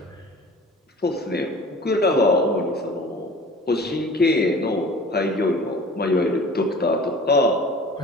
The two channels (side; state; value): both; normal; correlation 0.44